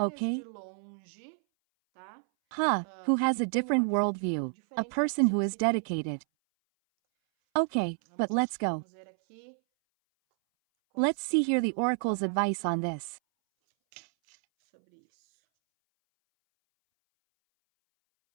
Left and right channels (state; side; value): silent; left; 58 dB below the other